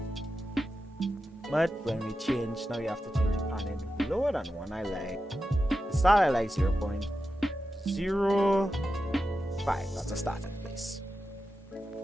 But when we change, now you have to change the panning lower than 1. I like the start. I like 0.05. That's a starting place.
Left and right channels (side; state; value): both; normal; correlation 0.91